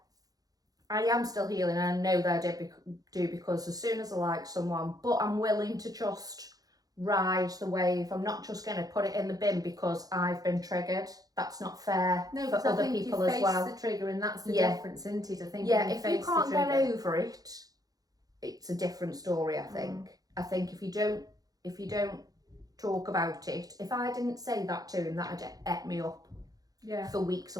I am still healing, and I know that I do because as soon as I like someone, but I'm willing to just ride the wave. I'm not just going to put it in the bin because I've been triggered. That's not fair for other people as well. The trigger, and that's the difference, isn't it? I think. Yeah, if you can't get over it, it's a different story. I think. I think if you don't talk about it, if I didn't say that to him, that'd ate me up. Yeah. For weeks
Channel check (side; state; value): left; late; 0.18 ms